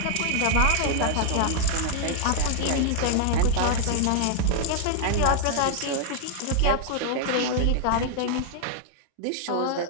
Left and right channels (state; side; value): different; both; correlation 0.00